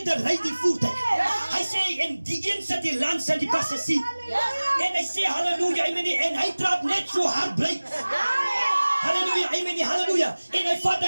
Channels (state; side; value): inverted; both; correlation -1.00